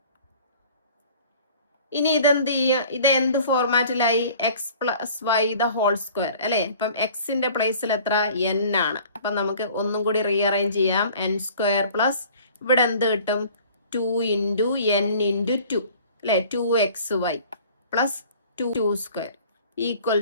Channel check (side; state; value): both; inverted; correlation -0.49